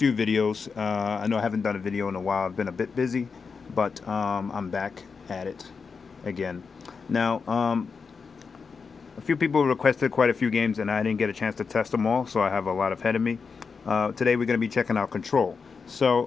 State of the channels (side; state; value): right; quieter; 5.3 dB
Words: videos. I know I haven't done a video in a while. I've been a bit busy, but I'm back at it again. Now, a few people requested quite a few games, and I didn't get a chance to test them all, so I have a lot ahead of me. Today we're going to be checking out Control.